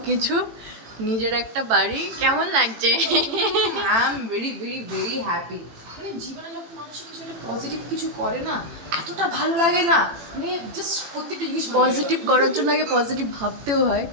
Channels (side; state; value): left; late; 18 ms